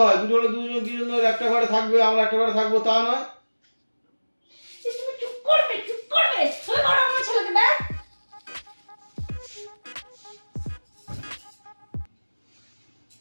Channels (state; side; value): inverted; both; correlation -1.00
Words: হয়, দুটো হলে দুজন একটা ঘরে থাকবে, আমরা একটা ঘরে থাকবো, তা নয়। তুমি চুপ করবে, চুপ করবে। তুমি করো আমার ছেলেকে ব্যাস।